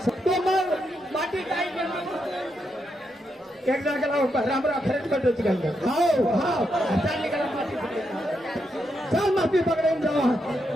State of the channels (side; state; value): both; normal; correlation 0.82